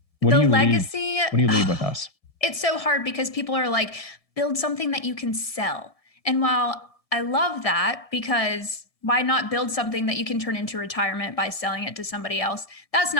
What do you leave with us? It's so hard because people are like, build something that you can sell. And while I love that, because why not build something that you can turn into retirement by selling it to somebody else? That's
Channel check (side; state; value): right; late; 1.7 ms